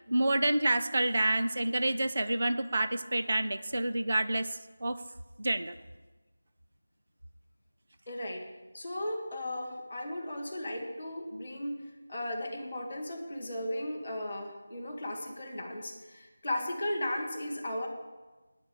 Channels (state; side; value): inverted; both; correlation -0.95